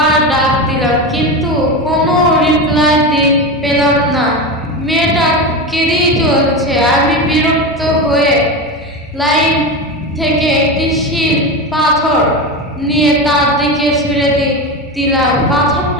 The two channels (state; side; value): normal; both; correlation 0.20